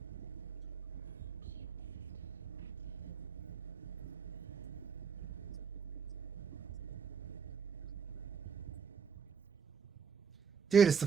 Dude, it's the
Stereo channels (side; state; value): left; quieter; 6.5 dB